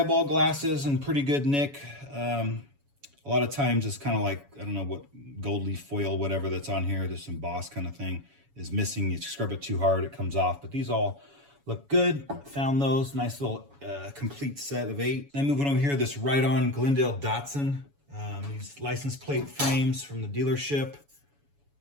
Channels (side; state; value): left; late; 7.1 ms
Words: glasses in pretty good nick. A lot of times it's kind of like, I don't know what, gold leaf foil, whatever that's on here, this embossed kind of thing is missing. You scrub it too hard, it comes off. But these all look good. Found those. Nice little complete set of 8. Then moving over here, this Ride-On Glendale Datsun. These license plate frames from the dealership.